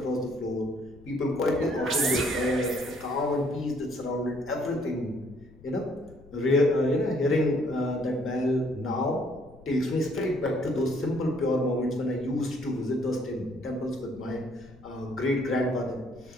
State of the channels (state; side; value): noise; left; rumble, 22 dB below the sound